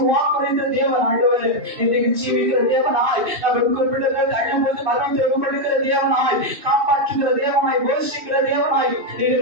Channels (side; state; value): left; late; 2.8 ms